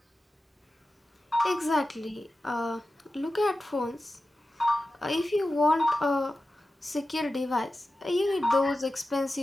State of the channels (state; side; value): normal; both; correlation 0.93